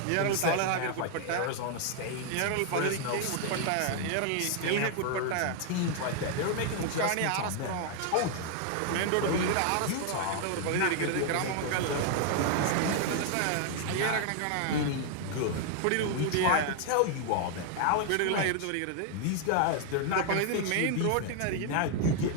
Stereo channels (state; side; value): different; both; correlation 0.00